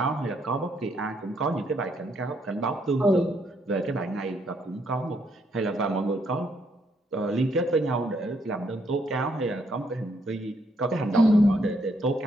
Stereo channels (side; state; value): both; normal; correlation 0.73